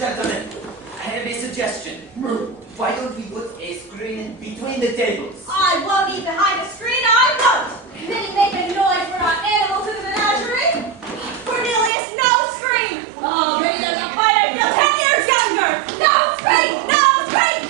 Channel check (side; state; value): left; drops out; at 11.9 s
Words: I have a suggestion. Why don't we put a screen between the tables? I won't eat behind a screen, I won't! Didn't make a noise, we're not animals in the menagerie! Cornelius, no screen! Oh, maybe there's a fight, I feel 10 years younger! No screen! No screen!